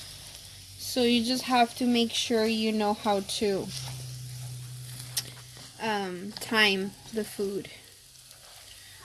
So you just have to make sure you know how to time the food.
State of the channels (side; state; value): both; identical; correlation 1.00